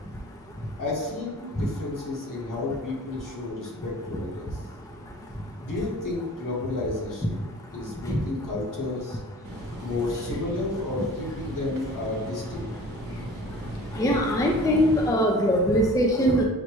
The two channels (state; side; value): normal; both; correlation 0.45